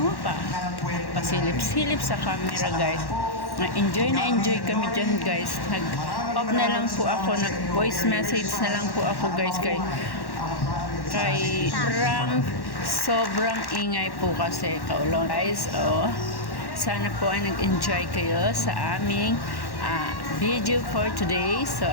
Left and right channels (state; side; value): late; right; 1.1 ms